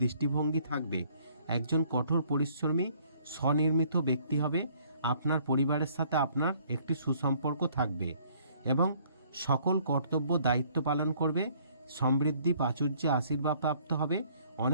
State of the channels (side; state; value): both; inverted; correlation -0.60